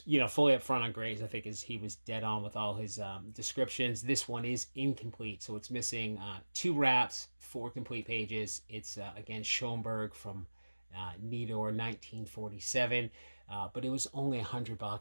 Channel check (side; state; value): both; inverted; correlation -1.00